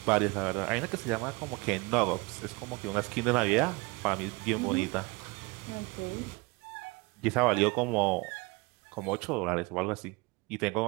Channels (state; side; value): quieter; left; 26.0 dB